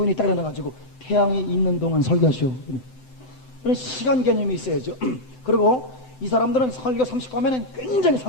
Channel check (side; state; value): right; late; 7.8 ms